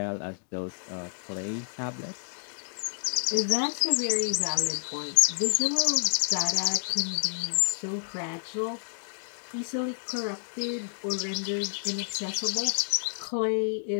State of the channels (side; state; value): right; silent; digital silence